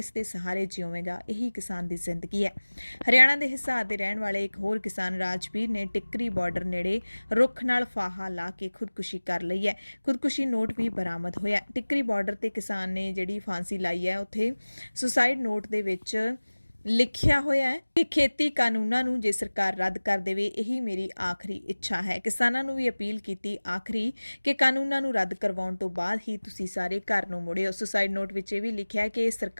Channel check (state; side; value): inverted; both; correlation -1.00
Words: ਦੇ ਸਹਾਰੇ ਜਿਉਵੇਗਾ। ਇਹੀ ਕਿਸਾਨ ਦੀ ਜ਼ਿੰਦਗੀ ਹੈ। ਹਰਿਆਣਾ ਦੇ ਹਿਸਾਰ ਦੇ ਰਹਿਣ ਵਾਲੇ ਇੱਕ ਹੋਰ ਕਿਸਾਨ ਰਾਜਵੀਰ ਨੇ ਟਿੱਕਰੀ ਬਾਰਡਰ ਨੇੜੇ ਰੁੱਖ ਨਾਲ ਫਾਹਾ ਲਾ ਕੇ ਖੁਦਕੁਸ਼ੀ ਕਰ ਲਈ ਹੈ। ਖੁਦਕੁਸ਼ੀ ਨੋਟ ਵੀ ਬਰਾਮਦ ਹੋਇਆ। ਟਿੱਕਰੀ ਬਾਰਡਰ ਤੇ ਕਿਸਾਨ ਨੇ ਜਿਹੜੀ ਫਾਂਸੀ ਲਾਈ ਹੈ, ਉੱਥੇ ਸੁਸਾਈਡ ਨੋਟ ਦੇ ਵਿੱਚ ਲਿਖਿਆ ਹੋਇਆ ਹੈ ਕਿ ਖੇਤੀ ਕਾਨੂੰਨਾਂ ਨੂੰ ਜੇ ਸਰਕਾਰ ਰੱਦ ਕਰ ਦੇਵੇ, ਇਹੀ ਮੇਰੀ ਆਖਰੀ ਇੱਛਾ ਹੈ। ਕਿਸਾਨਾਂ ਨੂੰ ਵੀ ਅਪੀਲ ਕੀਤੀ ਆਖਰੀ ਕਿ ਕਾਨੂੰਨਾਂ ਨੂੰ ਰੱਦ ਕਰਵਾਉਣ ਤੋਂ ਬਾਅਦ ਹੀ ਤੁਸੀਂ ਸਾਰੇ ਘਰ ਨੂੰ ਮੁੜਿਓ। ਸੁਸਾਈਡ ਨੋਟ ਵਿੱਚ ਇਹ ਵੀ ਲਿਖਿਆ ਕਿ